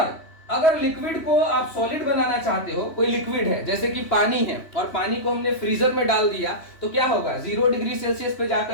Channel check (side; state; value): right; late; 3.1 ms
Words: अगर लिक्विड को आप सॉलिड बनाना चाहते हो, कोई लिक्विड है जैसे कि पानी है, और पानी को हमने फ्रीजर में डाल दिया तो क्या होगा, 0 डिग्री सेल्सियस पे